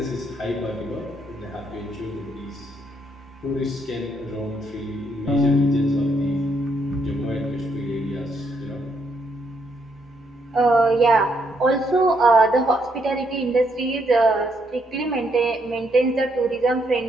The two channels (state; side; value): normal; both; correlation 0.74